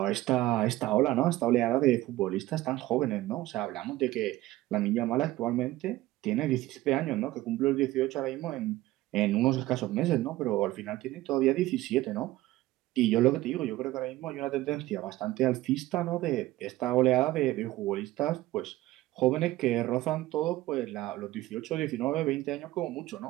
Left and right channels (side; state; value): left; quieter; 16.8 dB